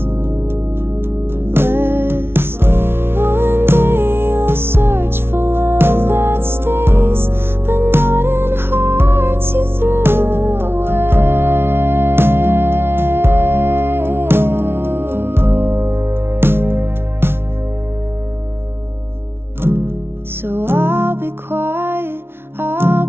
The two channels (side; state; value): left; late; 0.12 ms